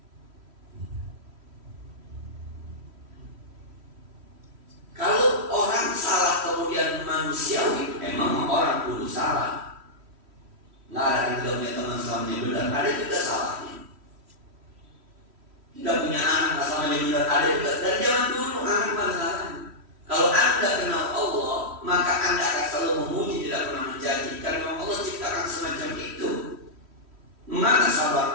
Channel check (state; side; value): late; left; 3.1 ms